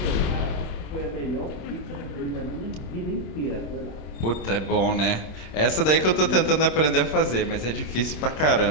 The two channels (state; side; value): late; right; 26 ms